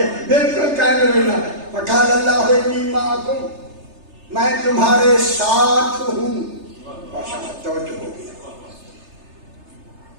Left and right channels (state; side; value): late; left; 3.3 ms